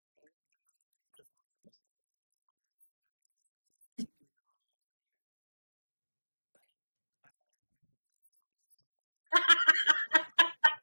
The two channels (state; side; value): inverted; both; correlation -1.00